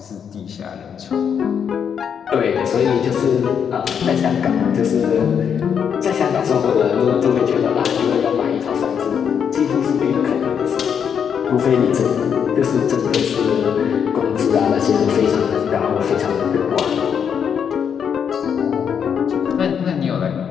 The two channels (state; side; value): quieter; right; 7.6 dB